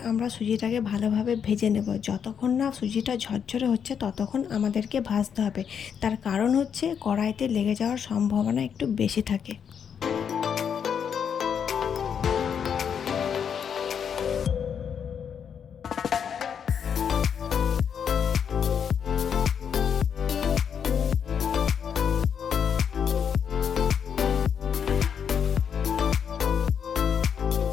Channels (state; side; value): quieter; right; 7.6 dB